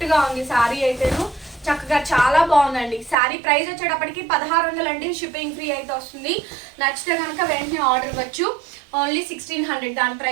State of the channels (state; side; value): drops out; left; at 3.2 s